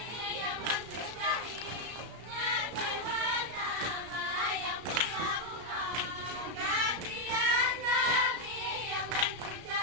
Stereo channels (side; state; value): left; late; 33 ms